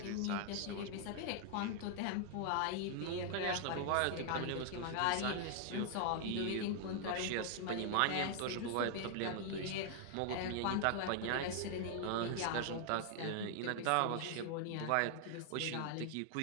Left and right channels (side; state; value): both; different; correlation 0.00